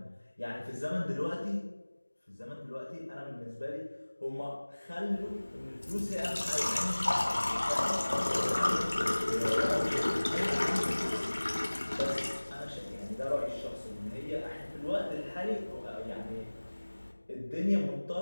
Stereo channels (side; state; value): both; inverted; correlation -1.00